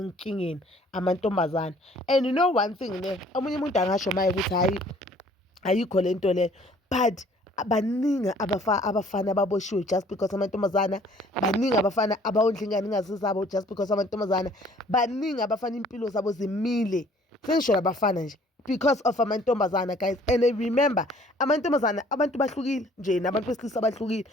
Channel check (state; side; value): normal; both; correlation 0.56